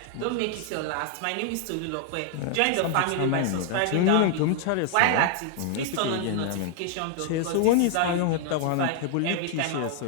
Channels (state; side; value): different; both; correlation 0.00